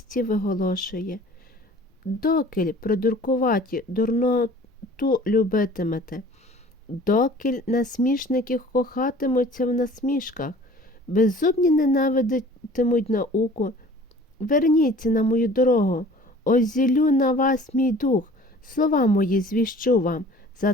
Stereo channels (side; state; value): both; normal; correlation 0.48